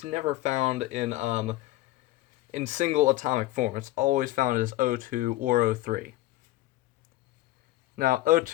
never found in single atomic form. It's always found as O2 or O3. Now,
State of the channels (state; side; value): quieter; right; 16.7 dB